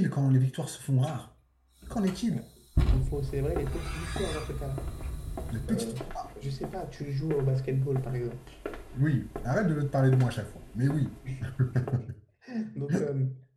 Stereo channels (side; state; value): both; identical; correlation 1.00